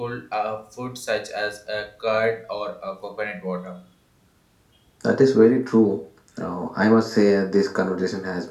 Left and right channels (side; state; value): both; identical; correlation 1.00